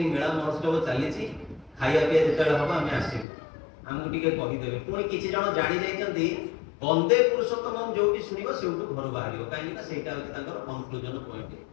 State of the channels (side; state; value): right; drops out; at 3.2 s